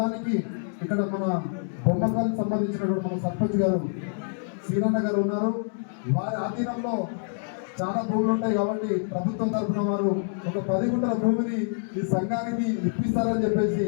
ఇక్కడ మన బొమ్మకాలకు సంబంధించినటువంటి మన సర్పంచ్ గారు శ్రీరన్న గారు ఉన్నారు. వారి ఆధీనంలో చాలా భూములు ఉంటాయి కాబట్టి ప్రభుత్వం తరఫున వారు ఒక 10 గుంటల భూమిని ఈ సంఘానికి ఇప్పిస్తారని చెప్పేసి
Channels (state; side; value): silent; right; digital silence